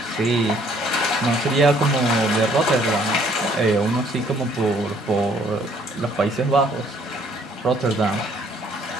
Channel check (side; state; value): both; normal; correlation 0.62